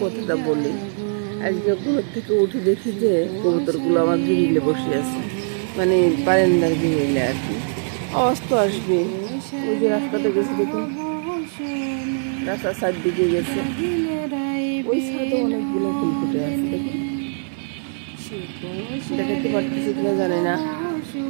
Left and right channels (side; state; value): left; silent; 64 dB below the other